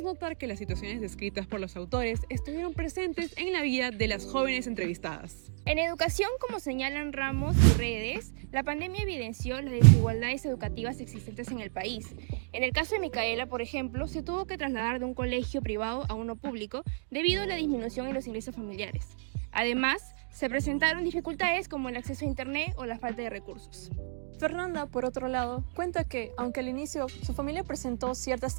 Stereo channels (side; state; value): left; silent; digital silence